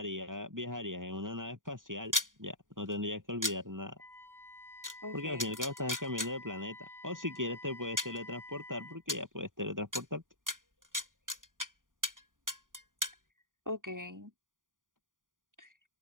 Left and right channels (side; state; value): left; late; 0.89 ms